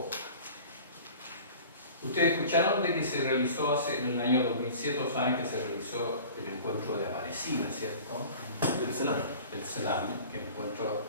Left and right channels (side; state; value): both; inverted; correlation -0.42